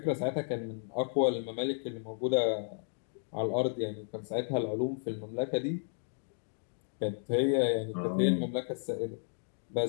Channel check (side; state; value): right; silent; 56 dB below the other